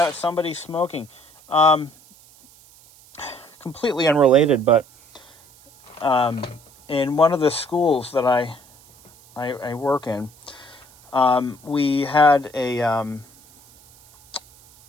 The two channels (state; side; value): noise; right; hiss, 27 dB below the sound